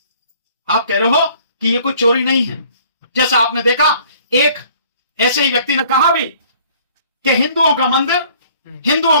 आप कह रहे हो कि ये कोई चोरी नहीं है। जैसा आपने देखा, एक ऐसे ही व्यक्ति ने कहा भी कि हिंदुओं का मंदिर,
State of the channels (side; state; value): both; inverted; correlation -0.56